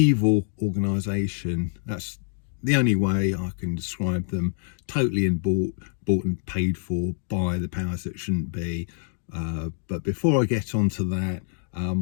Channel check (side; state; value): right; silent; 61 dB below the other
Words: organisation. That's the only way I can describe them. Totally bought and paid for by the powers that shouldn't be. But before I get onto that,